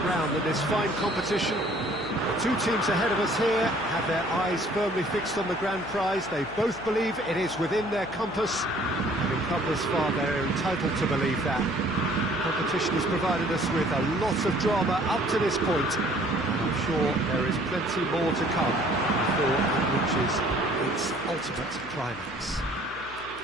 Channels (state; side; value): noise; left; hum, 20 dB below the sound